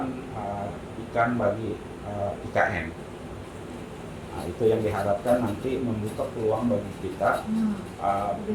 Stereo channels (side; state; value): both; identical; correlation 1.00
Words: ikan bagi IKN. Nah, itu yang diharapkan nanti membuka peluang bagi kita